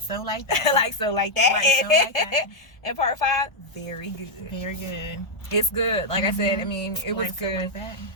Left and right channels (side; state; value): right; late; 1.3 ms